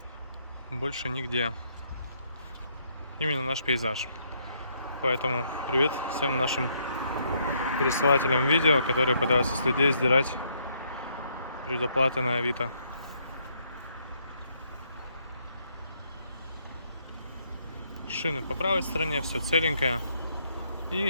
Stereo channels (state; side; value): inverted; both; correlation -0.71